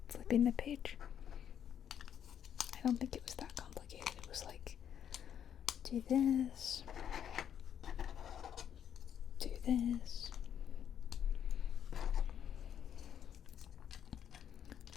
flipping the page. I don't think it was that complicated. It was like, do this, do this,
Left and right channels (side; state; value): right; quieter; 9.1 dB